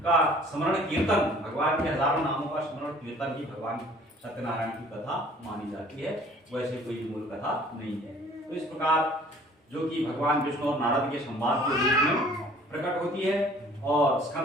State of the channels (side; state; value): both; normal; correlation 0.53